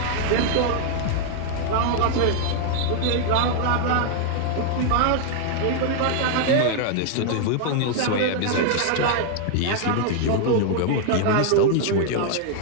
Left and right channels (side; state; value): both; different; correlation 0.00